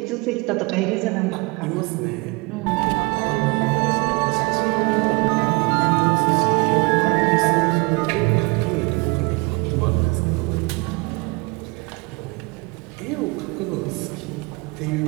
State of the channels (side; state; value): left; quieter; 27.6 dB